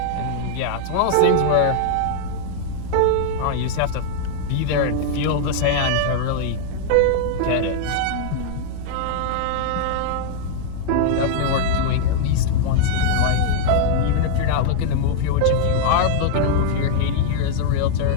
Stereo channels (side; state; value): both; different; correlation -0.01